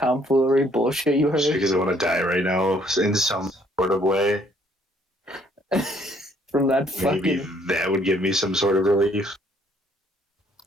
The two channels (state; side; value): normal; both; correlation 0.65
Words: bullshit you Just heard? because I want to die right now in some sort of way. From that Maybe fucking... that would give me some sort of relief.